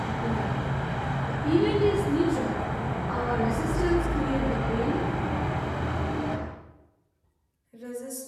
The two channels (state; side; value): identical; both; correlation 1.00